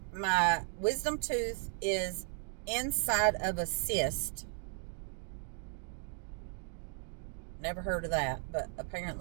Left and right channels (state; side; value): silent; left; 54 dB below the other